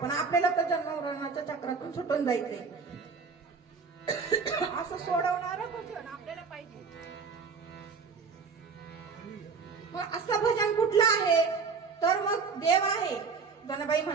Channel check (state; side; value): quieter; left; 5.2 dB